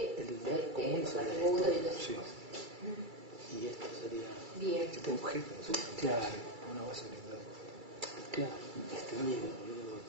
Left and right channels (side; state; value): left; late; 2.3 ms